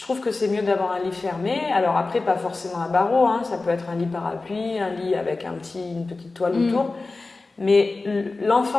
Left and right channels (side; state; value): right; quieter; 3.5 dB